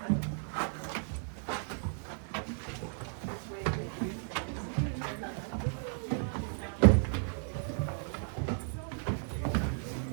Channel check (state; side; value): silent; left; 55 dB below the other